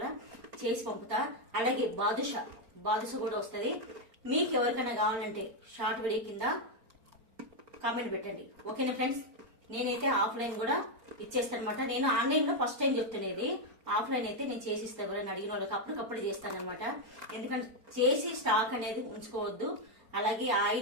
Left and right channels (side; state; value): left; late; 4.4 ms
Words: చేసి పంపుతా. అలాగే బాదుష కూడా వస్తుంది. మీకు ఎవరికైనా కావాలంటే షార్ట్ వీడియో కింద కామెంట్ పెట్టండి, ఓకేనా ఫ్రెండ్స్. నేనైతే ఆఫ్లైన్ కూడా ఇచ్చేస్తాను అనమాట. నేను ఆన్లైన్లో ఫస్ట్ టైం చెప్తున్నది. ఆఫ్లైన్ అయితే నేను చేసిస్తాను, ఎవరైనా అడిగిన వాళ్ళకి అప్పటికప్పుడు చేస్తాను అనమాట. ఎందుకంటే చేసి స్టాక్ అనేది ఉంచుకోవద్దు. అలాగే